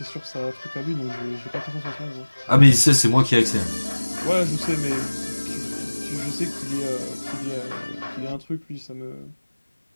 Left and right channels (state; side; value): inverted; both; correlation -1.00